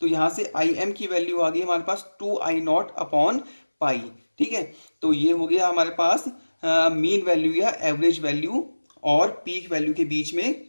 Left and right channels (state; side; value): inverted; both; correlation -1.00